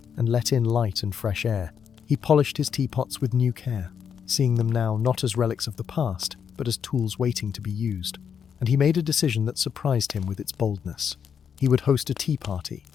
and let in light and fresh air. He polished his teapots with new care, seeing them now not as relics of the past, but as tools waiting to be used. And he made a decision that surprised him with its boldness. He would host a tea party,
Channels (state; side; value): quieter; right; 7.5 dB